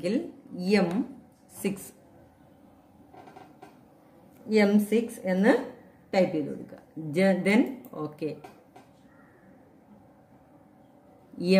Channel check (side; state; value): both; identical; correlation 1.00